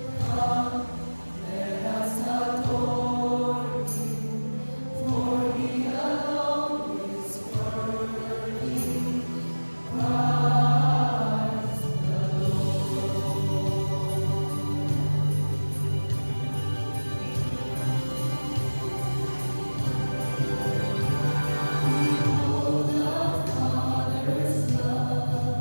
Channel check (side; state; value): both; inverted; correlation -1.00